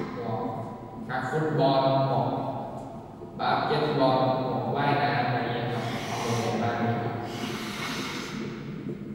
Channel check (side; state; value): both; identical; correlation 1.00